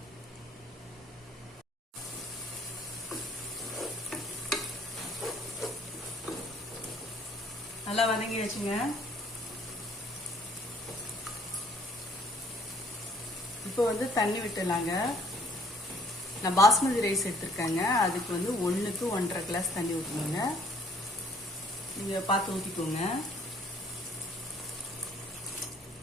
நல்லா வதங்கிடுச்சுங்க. இப்போ தண்ணி விட்டுலாங்க. நான் பாஸ்மதி ரைஸ் எடுத்திருக்கேங்க. அதுக்கு 1க்கு 1.5 கிளாஸ் தண்ணி ஊற்றணுங்க. நீங்கள் பார்த்து ஊற்றிக்கோங்க.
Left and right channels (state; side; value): normal; both; correlation 0.60